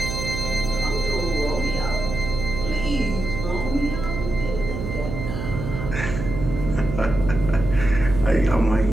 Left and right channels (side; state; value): right; noise; hum, 5 dB below the sound